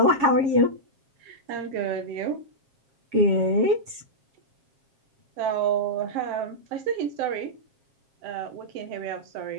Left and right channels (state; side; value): late; left; 7.4 ms